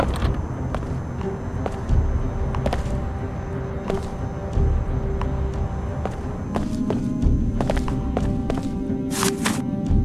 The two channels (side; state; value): both; identical; correlation 1.00